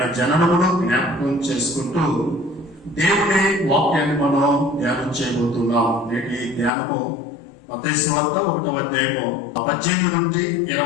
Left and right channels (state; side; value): drops out; right; at 6.7 s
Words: జననమును జ్ఞాపకం చేసుకుంటూ దేవుని వాక్యాన్ని మనం ధ్యానం చేయబోతున్నాం. నేటి ధ్యానము మత్తయి సువార్త 1వ అధ్యాయము 18 నుండి